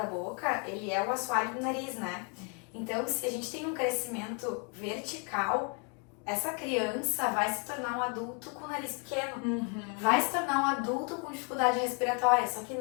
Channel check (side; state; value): right; quieter; 37.5 dB